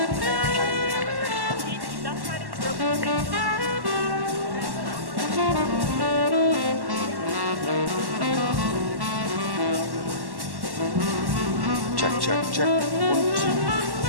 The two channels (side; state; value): left; late; 1.1 ms